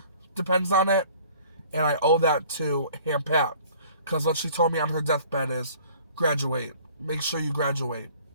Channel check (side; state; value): both; inverted; correlation -0.52